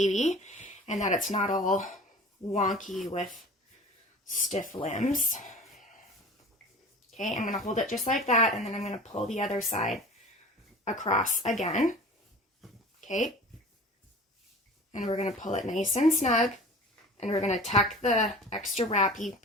and that it's not all wonky with stiff limbs. Okay, I'm going to hold it just like that, and then I'm going to pull the other side across again. Okay. And we're going to pull it nice and snug, and we're going to tuck the extra wrappy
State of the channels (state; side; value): normal; both; correlation 0.40